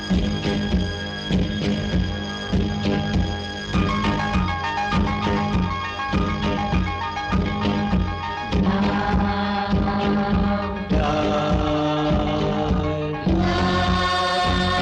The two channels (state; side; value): identical; both; correlation 1.00